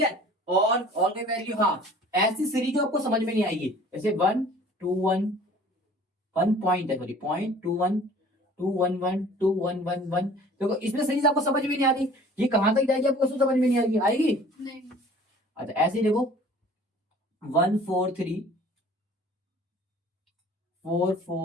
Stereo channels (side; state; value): both; normal; correlation 0.49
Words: और कोई वैल्यू, हाँ ऐसी सीरीज जो आपको समझ में नहीं आएगी, जैसे 1 2 1 1 पॉइंट है, सॉरी 0.21 2 1 1 2 1 1 1, देखो इसमें सीरीज आपको समझ में नहीं आ रही, ये कहां तक जाएगी आपको समझ में नहीं आएगी, आएगी नहीं। अच्छा ऐसे ही देखो 1 4 3 4